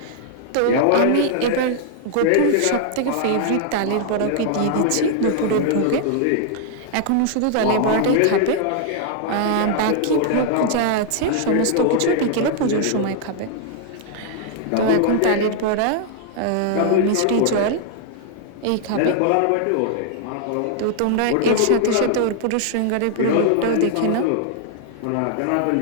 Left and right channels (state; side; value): different; both; correlation -0.01